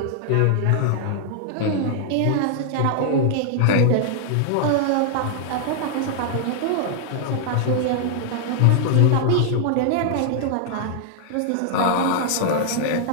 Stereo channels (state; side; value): different; both; correlation -0.01